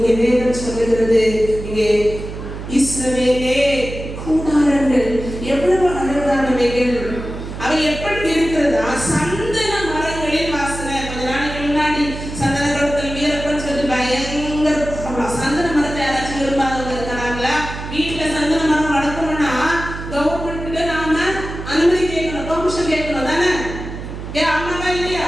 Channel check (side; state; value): right; noise; hum, 9 dB below the sound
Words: வேதம் சொல்லுகிறது, இங்கே இஸ்ரவேலே கூடாரங்கள் எவ்வளவு அழகானவைகள், அவை எப்படி இருக்கிறதா? சந்தன மரங்களின் வாசனை. கொஞ்ச நாளைக்கு முன்னாடி சந்தன குளத்தில் வீரப்பன் சொல்லி பயங்கர சந்தன மரத்தை யாராச்சும் விரும்பாதவங்க இருக்கிறாங்களா? வீட்டுல சந்தன மரம் வளர்க்கணும்னா கவர்மெண்ட்ல நாம அனுமதி கேட்கணும், பெர்மிஷன் கேட்கணும் தானே? ஏன் அம்மாவா இல்லையா?